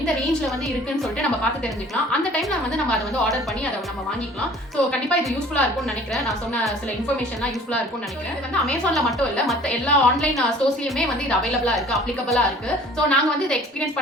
ரேஞ்ச்ல வந்து இருக்குன்னு சொல்லிட்டு நம்ம பார்த்து தெரிஞ்சுக்கலாம். அந்த டைம்ல வந்து நம்ம அதை வந்து ஆர்டர் பண்ணி அதை நம்ம வாங்கிக்கலாம். ஸோ கண்டிப்பா இது யூஸ்ஃபுல்லா இருக்கும்னு நினைக்கிறேன். நான் சொன்ன சில இன்ஃபர்மேஷன்லாம் யூஸ்ஃபுல்லா இருக்கும்னு நினைக்கிறேன். இது வந்து அமேசான்ல மட்டும் இல்ல, மற்ற எல்லா ஆன்லைன் ஸ்டோர்ஸ்லயுமே வந்து இது அவைலபிளா இருக்கு, அப்ளிகபிளா இருக்கு. ஸோ நாங்க வந்து இதை எக்ஸ்பீரியன்ஸ்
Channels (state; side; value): normal; both; correlation 0.50